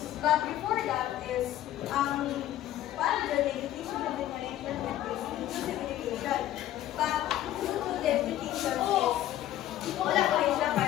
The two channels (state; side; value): quieter; right; 13.2 dB